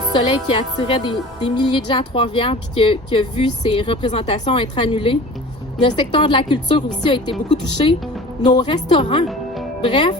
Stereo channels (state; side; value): normal; both; correlation 0.41